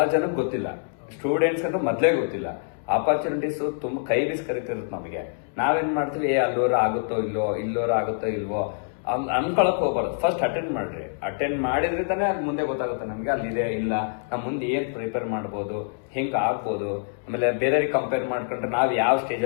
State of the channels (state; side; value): silent; right; 61 dB below the other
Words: ಜನಕ್ಕೆ ಗೊತ್ತಿಲ್ಲ. ಸ್ಟೂಡೆಂಟ್ಸ್ ಅಂತ ಮೊದ್ಲೇ ಗೊತ್ತಿಲ್ಲ. ಆಪರ್ಚುನಿಟೀಸ್ ತುಂಬಾ ಕೈ ಬೀಸ್ ಕರಿತಿರುತ್ತೆ ನಮಗೆ. ನಾವೇನ್ ಮಾಡ್ತೀವಿ, ಅಲ್ಲೋರ ಆಗುತ್ತೋ ಇಲ್ವೋ, ಇಲ್ಲೋರ ಆಗುತ್ತೋ ಇಲ್ವೋ ಅನ್ಕೊಳಕ್ ಹೋಗ್ಬಾರ್ದು. ಫಸ್ಟ್ ಅಟೆಂಡ್ ಮಾಡ್ರಿ. ಅಟೆಂಡ್ ಮಾಡಿದ್ರೆ ತಾನೇ ಅಲ್ಲಿ ಮುಂದೆ ಗೊತ್ತಾಗುತ್ತೆ ನಮ್ಗೆ ಅಲ್ಲಿದೆ ಇಲ್ಲ, ನಮ್ ಮುಂದೆ ಏನ್ ಪ್ರಿಪೇರ್ ಮಾಡ್ಬೋದು, ಹೆಂಗ್ ಆಗ್ಬೋದು, ಆಮೇಲೆ ಬೇರೆಯವ್ರಿಗೆ ಕಂಪೇರ್ ಮಾಡ್ಕೊಂಡ್ರೆ ನಾವ್ ಯಾವ ಸ್ಟೇಜ್